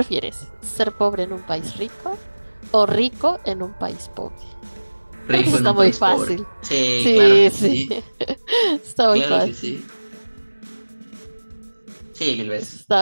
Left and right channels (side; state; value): both; inverted; correlation -1.00